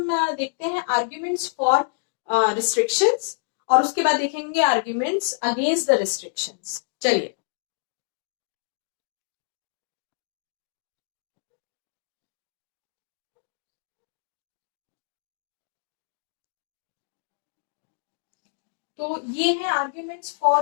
देखते हैं आर्ग्यूमेंट्स फॉर रिस्ट्रिक्शंस और उसके बाद देखेंगे आर्ग्यूमेंट्स अगेंस्ट द रिस्ट्रिक्शंस। चलिए, तो ये है आर्ग्यूमेंट्स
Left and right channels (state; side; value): silent; right; digital silence